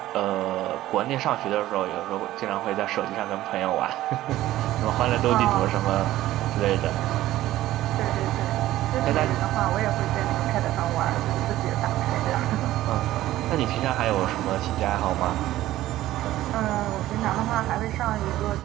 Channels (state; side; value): quieter; left; 14.9 dB